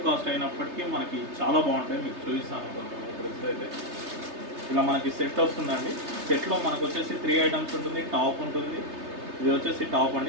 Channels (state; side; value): late; left; 3.3 ms